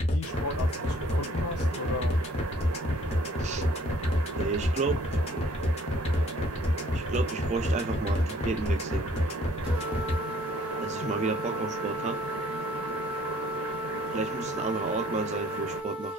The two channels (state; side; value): normal; both; correlation 0.58